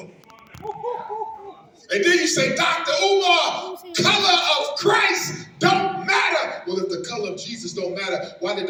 And then you say, Dr. Umar, color of Christ don't matter. Well, if the color of Jesus don't matter, why did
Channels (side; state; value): both; identical; correlation 1.00